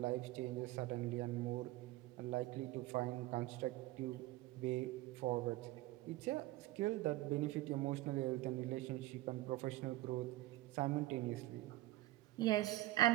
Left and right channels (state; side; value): quieter; left; 17.0 dB